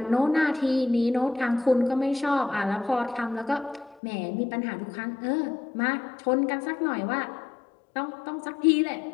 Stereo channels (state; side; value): drops out; right; at 4.0 s